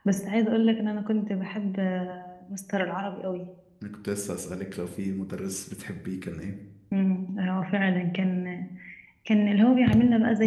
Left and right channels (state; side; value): identical; both; correlation 1.00